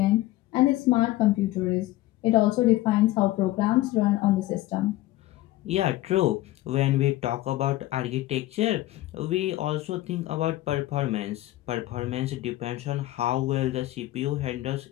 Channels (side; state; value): right; quieter; 16.4 dB